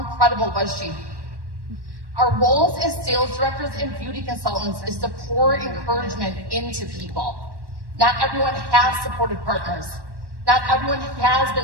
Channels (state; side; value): late; left; 1.1 ms